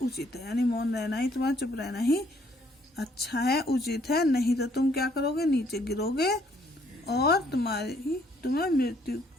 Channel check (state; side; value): normal; both; correlation 0.66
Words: उचित है, यानी मौन रहना ही, तुम्हारा चुप रहना ही अच्छा है, उचित है। नहीं तो तुम क्या करोगे, नीचे गिरोगे और तुम